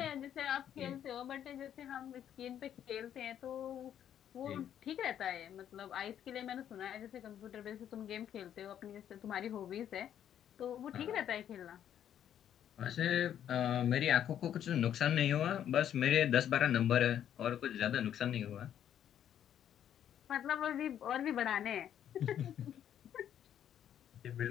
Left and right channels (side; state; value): right; quieter; 10.0 dB